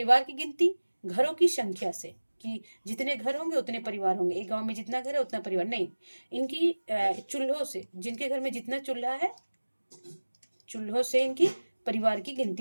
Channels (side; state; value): both; inverted; correlation -1.00